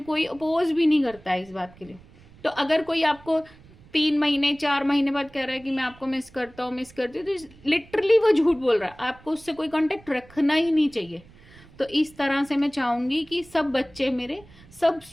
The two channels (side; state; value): right; noise; rumble, 24 dB below the sound